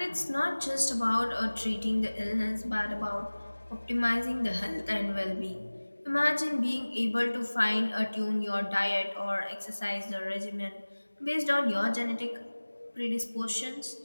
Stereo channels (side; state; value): both; inverted; correlation -1.00